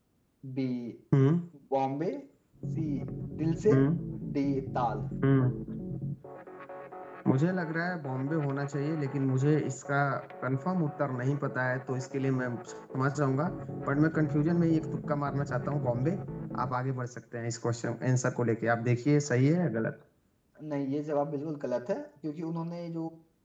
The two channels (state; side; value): identical; both; correlation 1.00